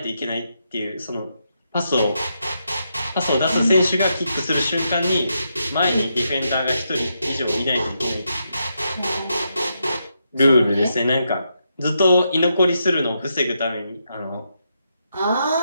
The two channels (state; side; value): inverted; both; correlation -0.82